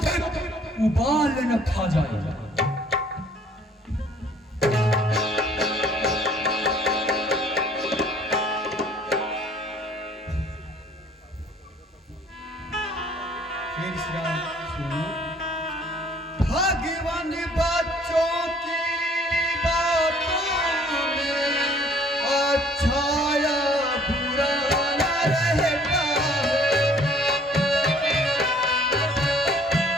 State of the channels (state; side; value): normal; both; correlation 0.57